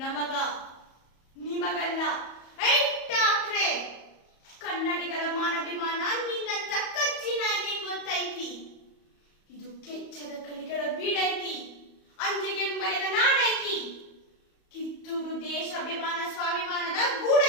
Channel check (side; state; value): right; late; 34 ms